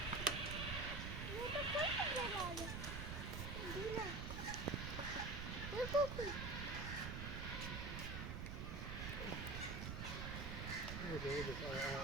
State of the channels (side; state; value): right; noise; rumble, 4 dB below the sound